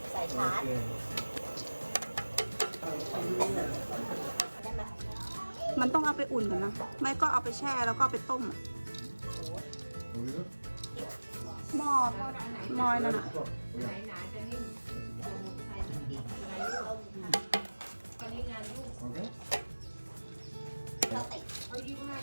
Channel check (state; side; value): inverted; both; correlation -1.00